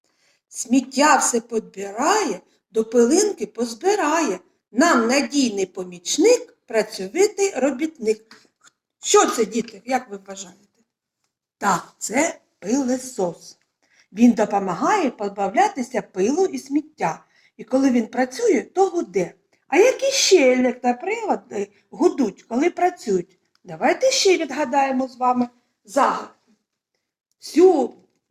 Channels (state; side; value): identical; both; correlation 1.00